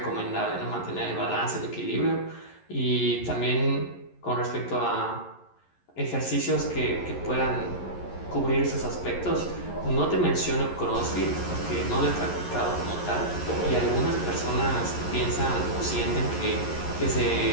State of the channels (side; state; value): right; late; 11 ms